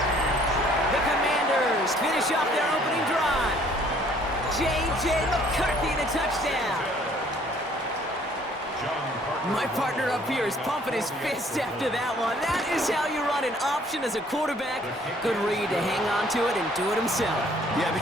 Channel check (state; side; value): normal; both; correlation 0.59